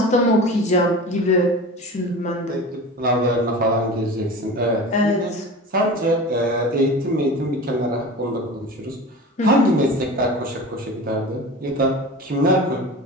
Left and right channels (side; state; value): both; normal; correlation 0.33